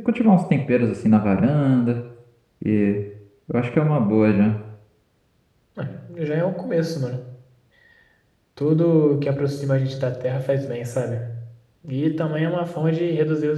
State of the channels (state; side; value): identical; both; correlation 1.00